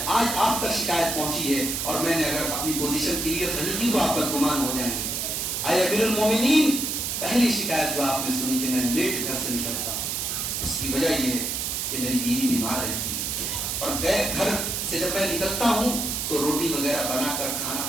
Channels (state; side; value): noise; right; hiss, 1 dB below the sound